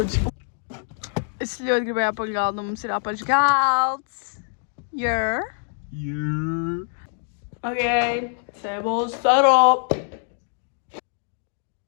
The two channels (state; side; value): silent; right; digital silence